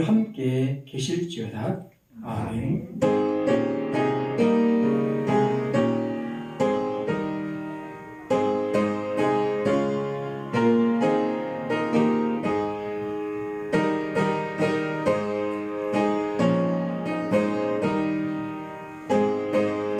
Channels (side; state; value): both; identical; correlation 1.00